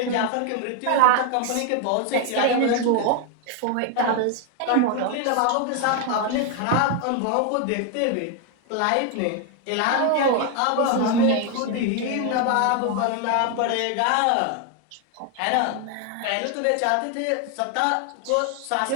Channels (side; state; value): both; different; correlation 0.01